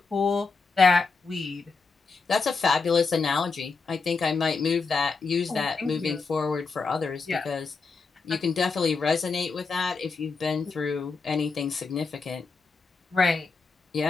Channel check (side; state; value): right; quieter; 4.5 dB